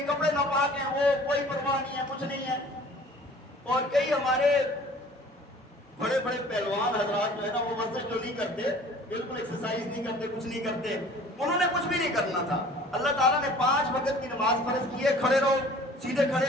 کپڑے ناپاک ہیں، وہ کوئی پرواہ نہیں ہے، کچھ نہیں ہے. اور کئی ہمارے بڑے بڑے پہلوان حضرات جو ہے نا وہ ورزش جو نہیں کرتے، بالکل ایکسرسائز نہیں کرتے، کچھ نہیں کرتے، انہوں نے کچھ بھی نہیں کرنا تھا. اللہ تعالیٰ نے 5 وقت کی نماز فرض کی ہے. کھڑے رہو، سیدھے کھڑے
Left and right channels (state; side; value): normal; both; correlation 0.49